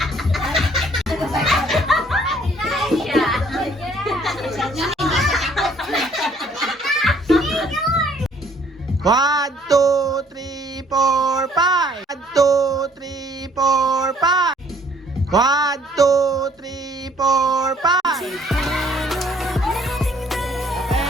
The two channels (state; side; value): normal; both; correlation 0.61